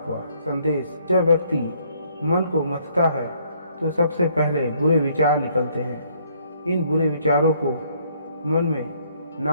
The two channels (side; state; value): both; inverted; correlation -0.66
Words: हुआ। संदेश: जब व्यक्ति मन को मथता है तो सबसे पहले बुरे विचार निकलते हैं। इन बुरे विचारों को मन में